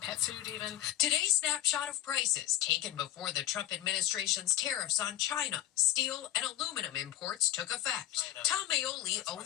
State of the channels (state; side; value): quieter; right; 13.4 dB